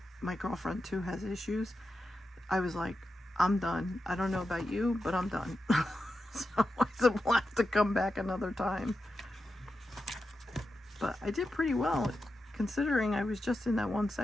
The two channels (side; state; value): both; normal; correlation 0.90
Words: my girlfriend too has issues, I was like, I'm done. I don't know about you, but I'm done. So I said, we'll have to come back another time. But I did pretty well, considering I was just in that one